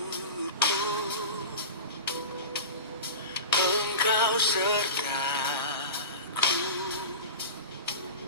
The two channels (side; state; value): both; inverted; correlation -0.31